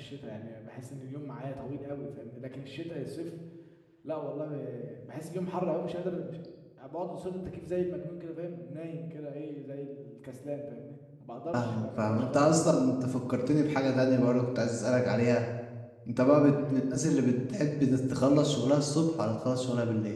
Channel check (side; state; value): both; identical; correlation 1.00